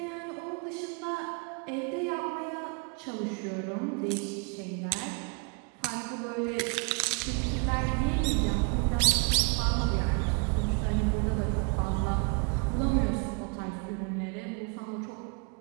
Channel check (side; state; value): left; quieter; 32.6 dB